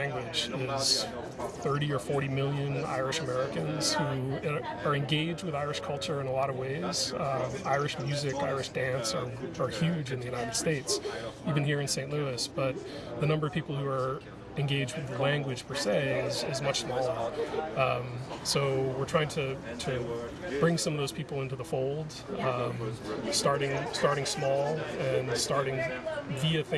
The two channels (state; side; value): identical; both; correlation 1.00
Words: Is 30 or 40 million Irish Americans who are engaged with Irish culture in a lot of ways. Irish music, Irish dance are huge in the United States, even here in St. Louis, but the number of people who are engaged with the language per se is much smaller. So we're trying to bring some of those people into the fold, starting small and starting via